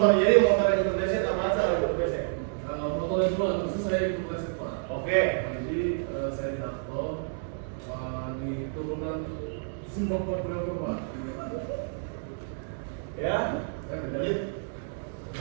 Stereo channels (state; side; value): silent; left; digital silence